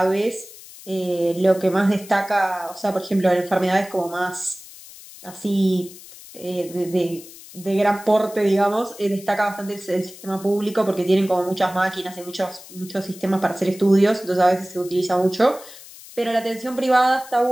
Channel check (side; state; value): left; noise; hiss, 18 dB below the sound